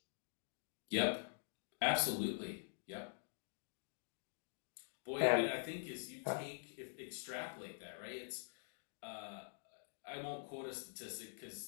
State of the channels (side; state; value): right; silent; digital silence